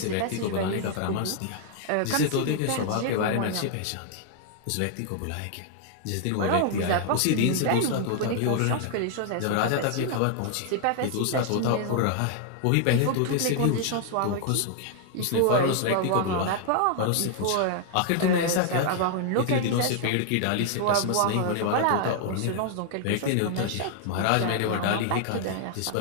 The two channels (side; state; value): both; different; correlation 0.00